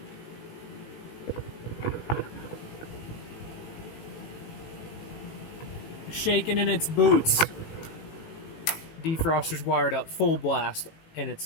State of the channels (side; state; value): right; late; 18 ms